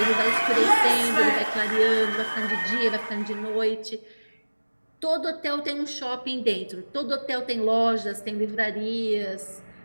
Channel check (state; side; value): inverted; both; correlation -1.00